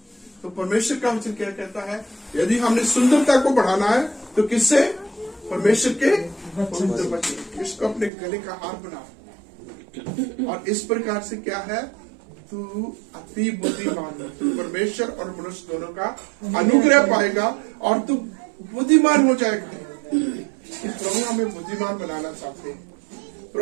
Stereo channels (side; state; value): left; drops out; at 8.1 s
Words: तो परमेश्वर का वचन क्या कहता है, यदि हमने सुंदरता को बढ़ाना है तो किससे? परमेश्वर के पवित्र वचन। इसको अपने गले का हार बना। और इस प्रकार से क्या है, तू अति बुद्धिमान है, तू परमेश्वर और मनुष्य दोनों का अनुग्रह पाएगा और तू बुद्धिमान हो जाएगा। प्रभु हमें बुद्धिमान बनाना चाहते हैं,